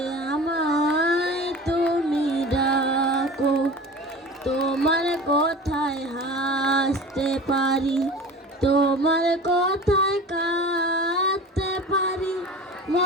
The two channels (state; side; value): normal; both; correlation 0.36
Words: আমায় তুমি ডাকো। তোমার কথায় হাসতে পারি, তোমার কথায় কাঁদতে পারি,